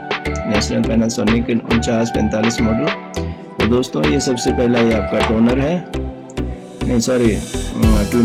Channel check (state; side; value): identical; both; correlation 1.00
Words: नेशनल पैनासोनिक 4945 मॉडल। तो दोस्तों ये सबसे पहला ये आपका टोनर है, नहीं सॉरी